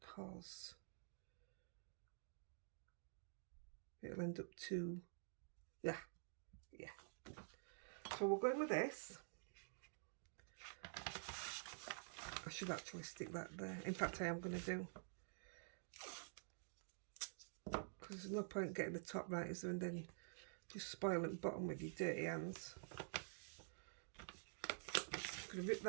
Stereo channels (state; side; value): silent; left; digital silence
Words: it'll end up too... Yeah. So we're going with this. I should actually stick that there. In fact, I am going to do. Because there's no point getting the top right, is there? And then just spoiling the bottom with your dirty hands. I'm going to rip